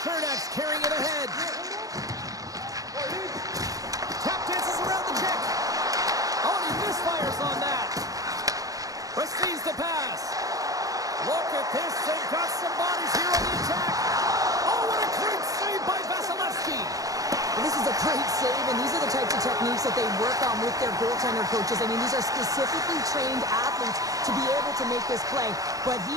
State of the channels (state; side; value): late; left; 0.17 ms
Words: Chernak's carrying it ahead. Tap dances around the kick. Oh, and he misfires on that. Receives the pass. Look at this. They've got some bodies here on the attack. Oh, what a great save by Vasilevsky. This is a great save, and these are the types of techniques that they work on with their goaltender coaches. I mean, these are specifically trained athletes to be able to make this play, but